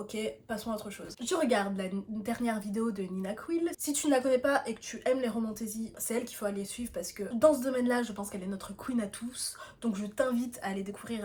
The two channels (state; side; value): identical; both; correlation 1.00